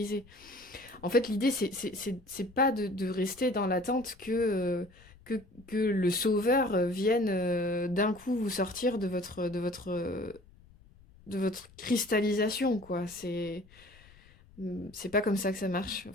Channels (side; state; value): left; noise; rumble, 25 dB below the sound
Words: En fait, l'idée, c'est pas de rester dans l'attente que le sauveur vienne d'un coup vous sortir de votre cristallisation, quoi. C'est pas comme ça que ça marche.